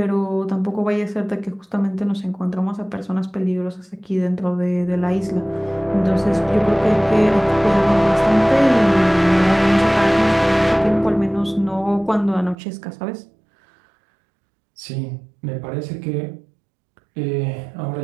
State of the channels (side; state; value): left; drops out; at 12.6 s